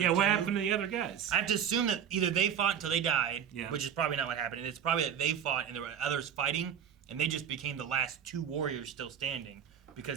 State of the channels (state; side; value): quieter; left; 8.6 dB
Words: Yeah, what too. happened to the other guys? I have to assume that either they fought until they died, Yeah. which is probably not what happened, and it's probably that they fought and there were others fighting, and they just became the last 2 warriors still standing